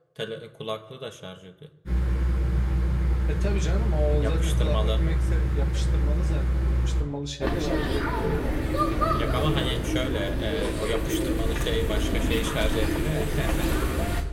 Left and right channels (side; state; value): both; identical; correlation 1.00